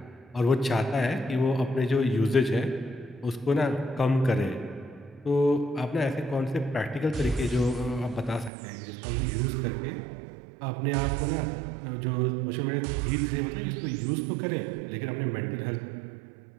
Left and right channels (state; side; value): drops out; left; at 8.5 s